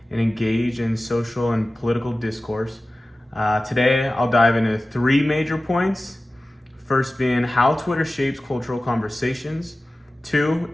and engage in social and political discourse. Today, I'll dive into three major points. First being how Twitter shapes cultural conversations. Two,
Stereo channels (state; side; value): normal; both; correlation 0.96